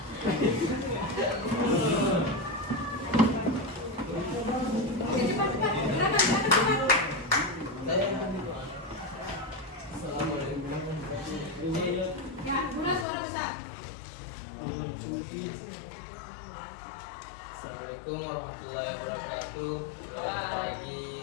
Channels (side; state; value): right; drops out; at 13.1 s